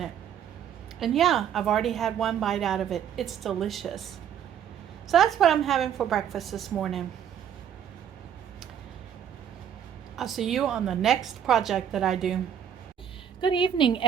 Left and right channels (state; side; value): quieter; left; 9.0 dB